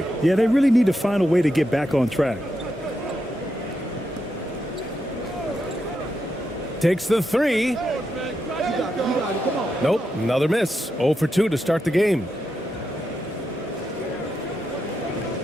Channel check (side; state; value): both; normal; correlation 0.85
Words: Yeah, they really need to find a way to get back on track. Takes the three. Nope, another miss. 0 for 2 to start the game.